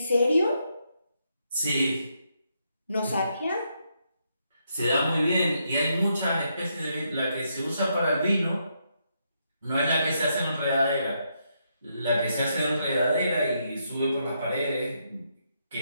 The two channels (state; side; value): inverted; both; correlation -0.78